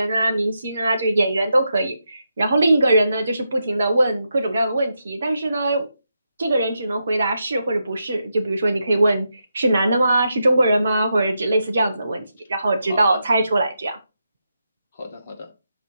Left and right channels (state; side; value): inverted; both; correlation -0.85